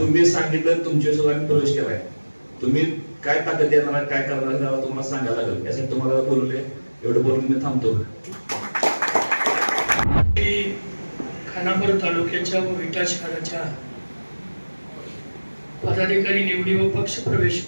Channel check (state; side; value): inverted; both; correlation -1.00